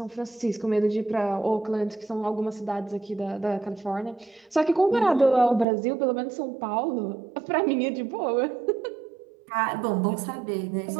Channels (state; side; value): drops out; left; at 5.7 s